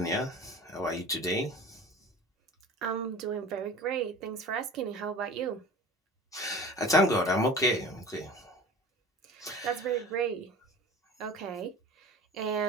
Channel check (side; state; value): both; normal; correlation 0.39